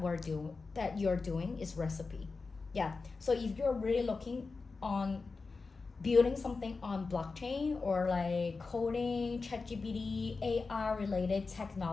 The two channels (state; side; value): quieter; right; 4.2 dB